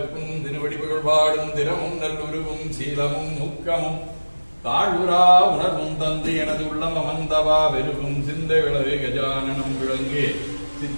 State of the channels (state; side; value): inverted; both; correlation -1.00